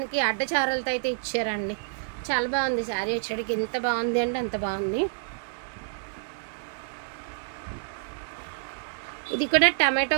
అడ్డచారలతో అయితే ఇచ్చారండి, చాలా బాగుంది శారీ వచ్చేటికి, ఎంత బాగుంది అంటే అంత బాగుంది। ఇది కూడా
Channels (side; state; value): left; silent; 59 dB below the other